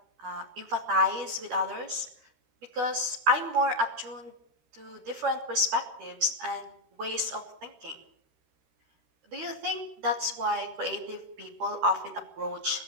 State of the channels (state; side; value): late; left; 13 ms